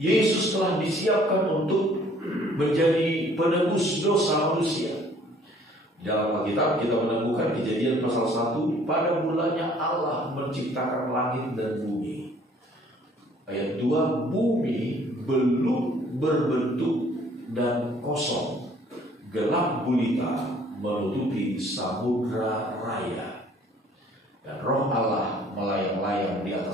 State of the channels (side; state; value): both; normal; correlation 0.58